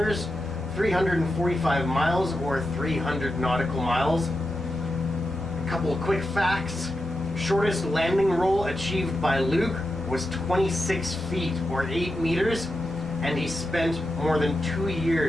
345 miles or 300 nautical miles. A couple of quick facts. Shortest landing roll achieved by Luke was 26 feet or 8 meters, and he spent more than 2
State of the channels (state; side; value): normal; both; correlation 0.88